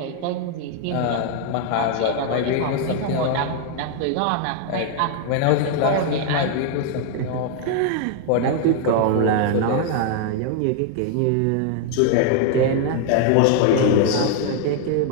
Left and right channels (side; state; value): both; different; correlation 0.00